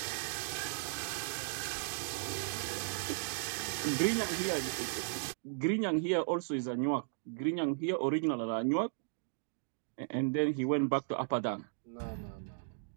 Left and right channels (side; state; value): left; silent; digital silence